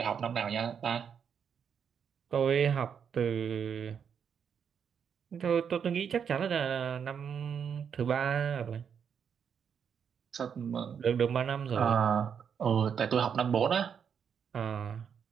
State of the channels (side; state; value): left; quieter; 7.4 dB